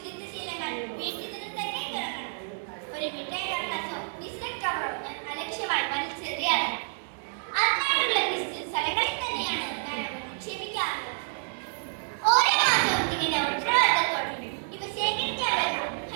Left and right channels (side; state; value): left; silent; digital silence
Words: ശീലങ്ങൾ വീട്ടിൽ നിന്ന് തന്നെ തുടങ്ങണം. ഒരു മിഠായി കടലാസോ ബിസ്ക്കറ്റ് കവറോ ഞാൻ അലക്ഷ്യമായി വലിച്ചെറിയാറില്ല. അതിനായിട്ടുള്ള സ്ഥലങ്ങളിൽ തന്നെയാണ്